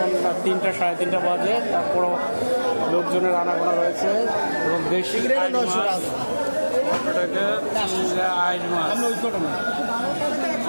3টা 3:30 বাজে, তারপরও লোকজনের আনাগোনা রয়েছে এবং দেশি আইস মাছ।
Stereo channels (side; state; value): both; inverted; correlation -1.00